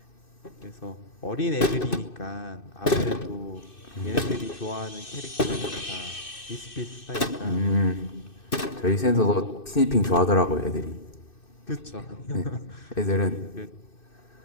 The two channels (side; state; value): right; late; 2.6 ms